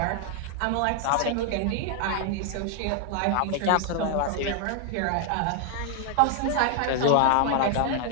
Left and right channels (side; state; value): both; different; correlation 0.00